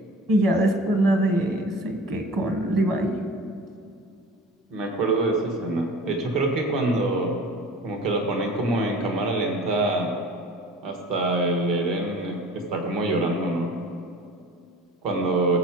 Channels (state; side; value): normal; both; correlation 0.42